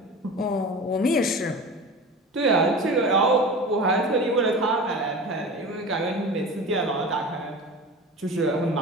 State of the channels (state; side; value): normal; both; correlation 0.34